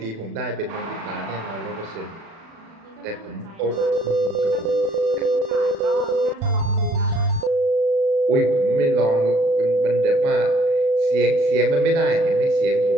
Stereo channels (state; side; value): late; left; 36 ms